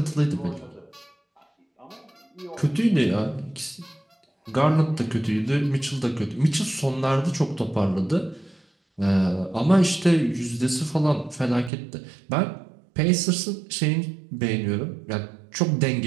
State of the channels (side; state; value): left; drops out; at 11.7 s